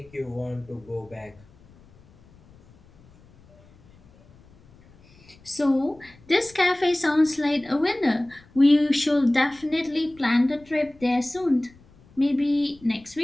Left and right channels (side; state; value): left; noise; rumble, 27 dB below the sound